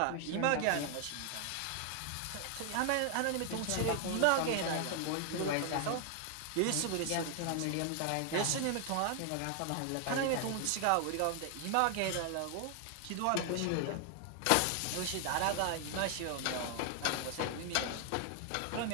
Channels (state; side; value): different; both; correlation 0.00